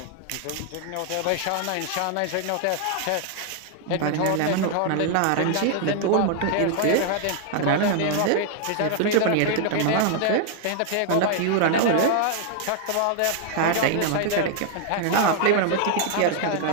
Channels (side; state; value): both; different; correlation 0.00